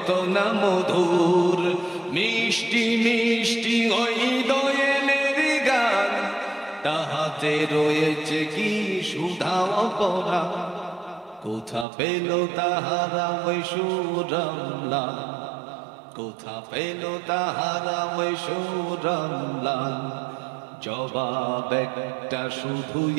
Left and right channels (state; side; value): drops out; left; at 11.9 s